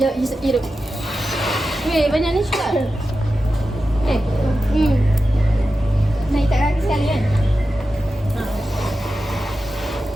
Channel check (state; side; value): normal; both; correlation 0.92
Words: Jom hidup. Weh, banyak ni juga. Naik tak kaki sekali kan?